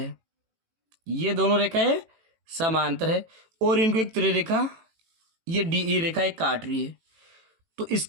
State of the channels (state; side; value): late; left; 18 ms